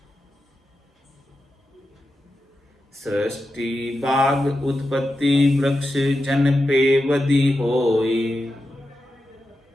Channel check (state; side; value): normal; both; correlation 0.90